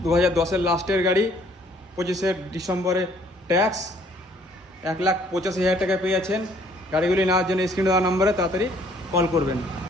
2010-এর লাস্টের গাড়ি, 25 ডিসেম্বরে ট্যাক্স, 1,85,000 টাকায় পেয়ে যাচ্ছেন। গাড়িগুলি নেওয়ার জন্য স্ক্রিনে দেওয়া নম্বরে তাড়াতাড়ি কল করবেন।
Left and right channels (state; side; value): normal; both; correlation 0.61